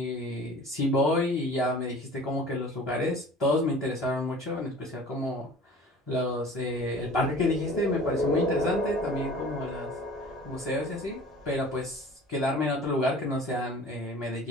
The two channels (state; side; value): normal; both; correlation 0.44